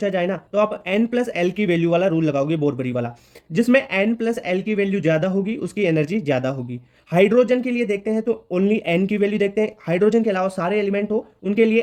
जाए ना तो आप n+L की वैल्यू वाला रूल लगाओगे, बोरबरी वाला, जिसमें n+L की वैल्यू ज्यादा होगी उसकी एनर्जी ज्यादा होगी। हाइड्रोजन के लिए देखते हैं तो ओनली n की वैल्यू देखते हैं, हाइड्रोजन के अलावा सारे एलिमेंट हो उनके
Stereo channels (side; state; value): both; identical; correlation 1.00